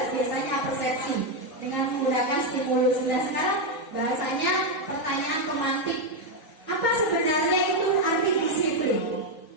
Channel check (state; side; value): late; right; 3.9 ms